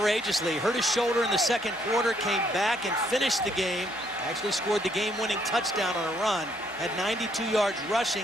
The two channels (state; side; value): normal; both; correlation 0.69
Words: hurt his shoulder in the second quarter, came back and finished the game, actually scored the game-winning touchdown on a run, had 92 yards rushing